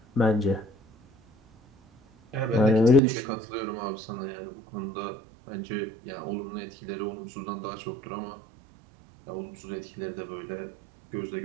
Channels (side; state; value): left; drops out; at 3.0 s